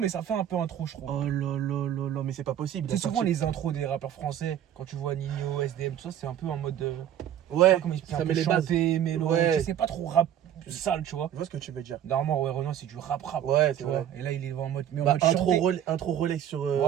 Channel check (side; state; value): left; quieter; 10.5 dB